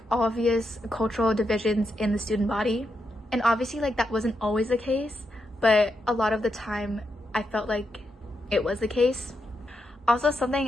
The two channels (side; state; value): both; normal; correlation 0.83